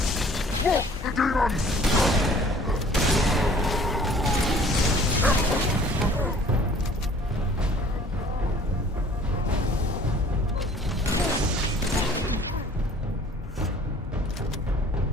Look, the demons!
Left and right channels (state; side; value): normal; both; correlation 0.53